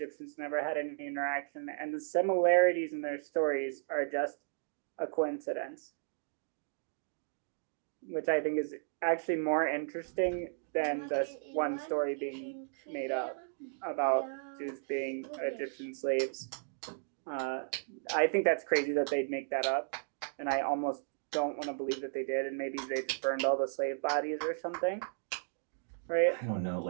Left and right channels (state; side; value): silent; left; digital silence